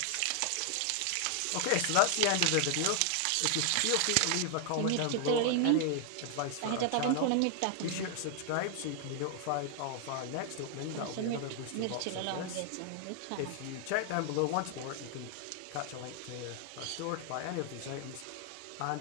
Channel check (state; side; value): different; both; correlation 0.00